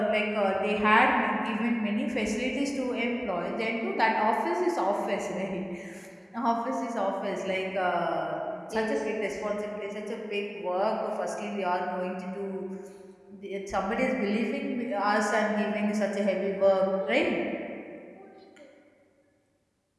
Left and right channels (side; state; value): both; identical; correlation 1.00